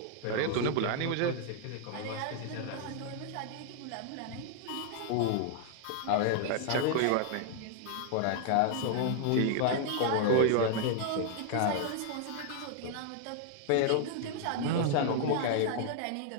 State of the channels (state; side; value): different; both; correlation 0.00